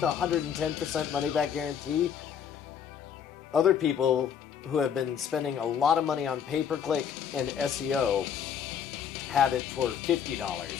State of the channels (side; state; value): right; quieter; 8.1 dB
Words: 110% money back guarantee. Other people who have been spending a lot of money on pay-per-click and SEO have it for $50,